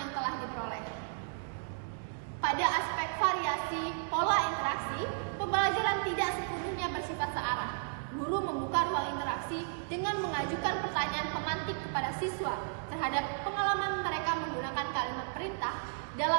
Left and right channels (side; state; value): left; silent; digital silence